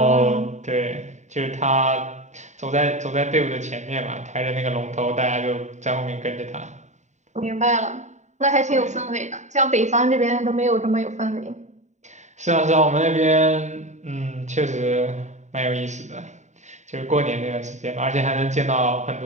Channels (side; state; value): left; late; 0.34 ms